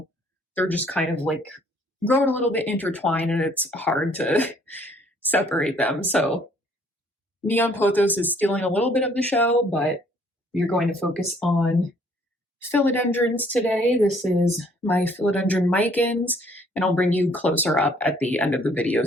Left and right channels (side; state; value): both; normal; correlation 0.61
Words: they're just kind of like growing a little bit intertwined, and it's hard to separate them. So neon pothos is stealing a little bit of the show, but we're going to focus on philodendrons today. This is my philodendron micans, and I'll bring you closer up at the end of the video